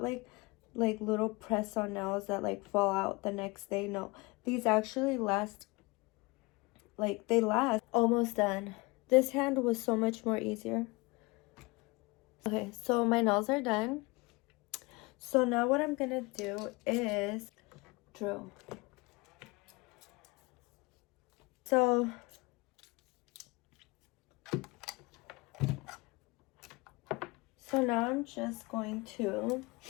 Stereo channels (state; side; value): quieter; right; 24.8 dB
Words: like little press-on nails that like fall out the next day. No, these actually last. Like they last. Almost done. This hand was so much more easier. Okay, so my nails are done. So now what I'm gonna do is drill. So now I'm just going to